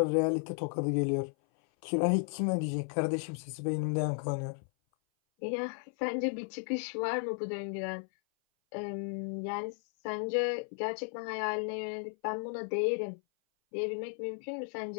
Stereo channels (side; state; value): right; silent; 55 dB below the other